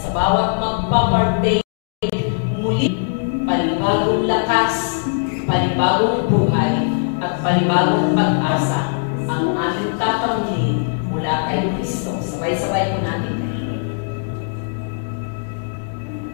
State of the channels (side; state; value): right; silent; digital silence